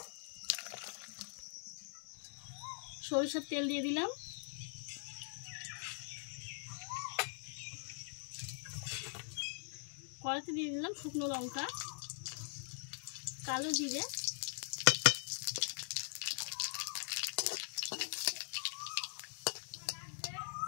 সরিষার তেল দিয়ে দিলাম, কড়াইতে দিয়ে দিলাম শুকনো লঙ্কা, কালো জিরে,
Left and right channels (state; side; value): silent; right; digital silence